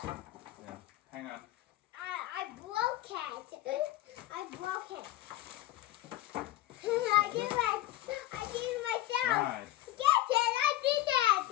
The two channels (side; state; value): right; quieter; 15.2 dB